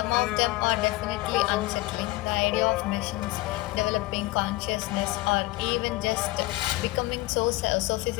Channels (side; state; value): right; quieter; 20.0 dB